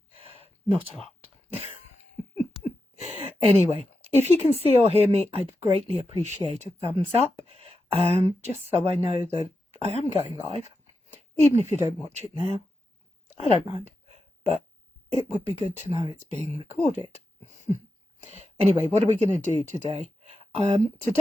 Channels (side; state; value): both; normal; correlation 0.89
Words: Not a lot. Anyway, if you can see or hear me, I'd greatly appreciate a thumbs up, just so I know that I am going live. Even if you don't watch it now, I don't mind, but it would be good to know it's being recorded. Anyway, what are we going to do today?